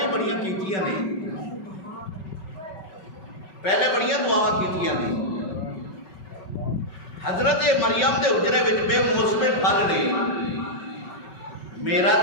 ہی بڑیاں کیتیاں نے، پہلے بڑیاں دعاواں کیتیاں نے، حضرت مریم دے حجرے وچ بے موسم پھل نے، میرا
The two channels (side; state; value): right; late; 5.3 ms